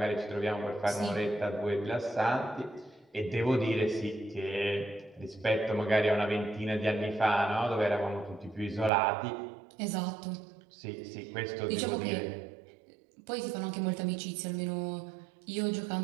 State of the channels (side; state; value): left; drops out; at 8.9 s